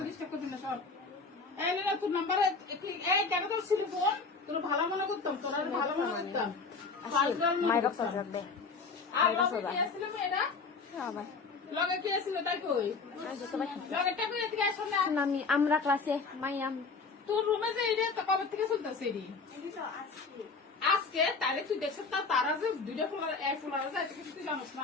ডিস্টার্ব করবি না সর এই না তোর নাম্বারে এই টাকা তো ছিল ফোন তোর ভালো মনে করতাম তোর ভালো মনে করতাম মাইরা সাজাবে আর কি আসলে মেয়েরা আবার লগে কি আসলে তাই কই লগে টাকা এদিকে আসো না আমি আমরা ক্লাসে মাইয়াম তোর রুমে যে এটা তো কবে থেকে চলতেছে এডি আজকে তাহলে তুই দেখছিস তারা যে দুইটা ফুলার যায় তুই জানিস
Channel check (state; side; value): quieter; right; 4.5 dB